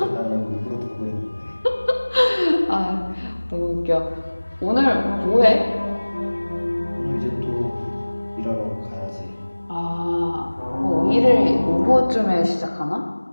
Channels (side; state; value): both; inverted; correlation -1.00